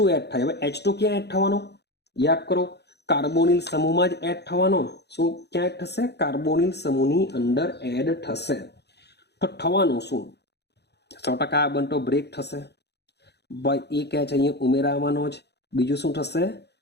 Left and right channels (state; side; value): late; right; 0.49 ms